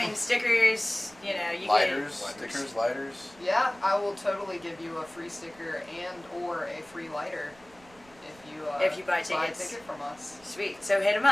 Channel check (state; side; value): noise; right; rumble, 26 dB below the sound